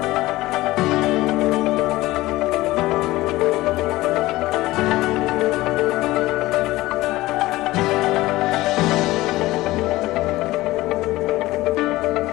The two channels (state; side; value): quieter; right; 18.2 dB